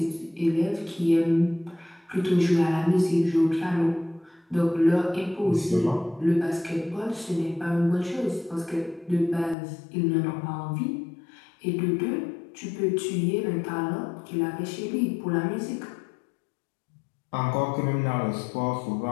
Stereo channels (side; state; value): right; drops out; at 9.6 s